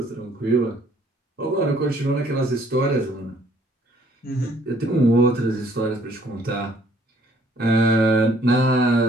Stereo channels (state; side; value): normal; both; correlation 0.62